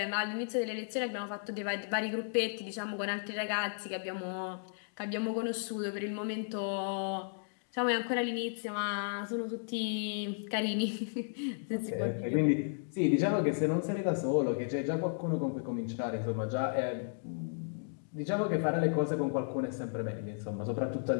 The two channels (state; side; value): silent; right; digital silence